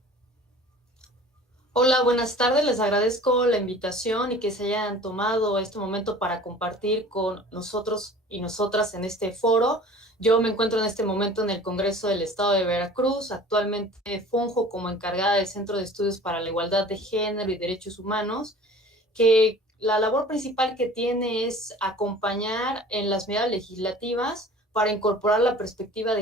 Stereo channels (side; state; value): both; normal; correlation 0.45